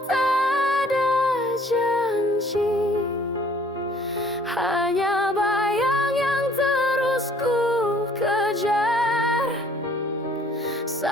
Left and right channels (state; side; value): normal; both; correlation 0.58